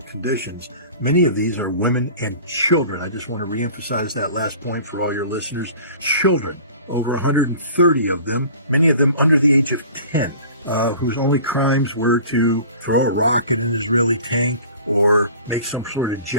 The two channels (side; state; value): both; inverted; correlation -0.44